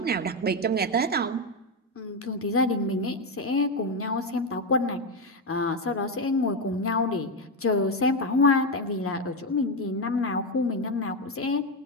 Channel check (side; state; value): both; normal; correlation 0.09